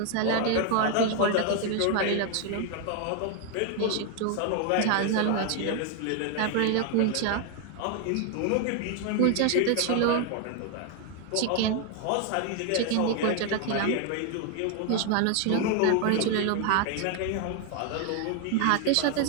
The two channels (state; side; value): different; both; correlation 0.01